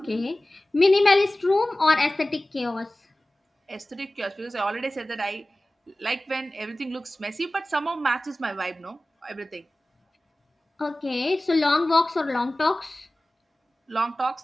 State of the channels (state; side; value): normal; both; correlation 0.97